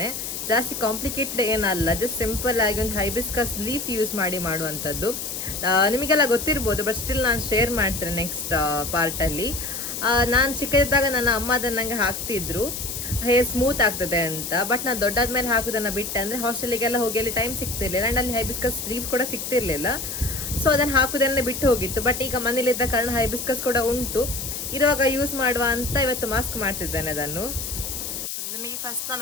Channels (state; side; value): noise; left; hiss, 5 dB below the sound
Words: ಜಾಸ್ತಿ ಕಾಂಪ್ಲಿಕೇಟೆಡ್ ಏನಲ್ಲ, ಜಸ್ಟ್ ಸಿಂಪಲ್ ಆಗಿ ಒಂದು ಹೈಬಿಸ್ಕಸ್ ಲೀಫ್ ಯೂಸ್ ಮಾಡಿ ಮಾಡುವಂಥದ್ದು. ನಿಮಗೆಲ್ಲ ಗೊತ್ತಿರ್ಬೋದು, ಬಟ್ ಸ್ಟಿಲ್ ನಾನು ಶೇರ್ ಮಾಡ್ತೇನೆ ನೆಕ್ಸ್ಟ್ ಪಾರ್ಟಲ್ಲಿ. ನಾನು ಚಿಕ್ಕದಿದ್ದಾಗ ನನ್ನ ಅಮ್ಮ ಅದನ್ನು ನನಗೆ ಹಾಕ್ತಿದ್ರು, ಹೇರ್ ಸ್ಮೂತ್ ಆಗ್ತದೆ ಅಂತ. ಬಟ್ ನಾನು ದೊಡ್ಡಾದ್ಮೇಲೆ ಹಾಕೋದನ್ನು ಬಿಟ್ಟೆ, ಅಂದರೆ ಹಾಸ್ಟೆಲಿಗೆಲ್ಲ ಹೋಗಿ ಅಲ್ಲಿ ಟೈಮ್ ಸಿಗ್ತಿರ್ಲಿಲ್ಲ, ಆ್ಯಂಡ್ ಅಲ್ಲಿ ಹೈಬಿಸ್ಕಸ್ ಲೀಫ್ ಕೂಡ ಸಿಗ್ತಿರ್ಲಿಲ್ಲ. ಸೊ ಅದನ್ನು ಹಾಕೋದನ್ನೇ ಬಿಟ್ಟು ಹೋಗಿತ್ತು. ಬಟ್ ಈಗ ಮನೇಲಿದ್ದ ಕಾರಣ ಹೈಬಿಸ್ಕಸ್ ಕೂಡ ಉಂಟು, ಇರುವಾಗ ಯೂಸ್ ಮಾಡುವ ಅಂತ ಇವತ್ತು ಮಾಸ್ಕ್ ಮಾಡ್ತಿದ್ದೇನೆ ಅದನ್ನು. ನಿಮಗೆ ಫಸ್ಟ್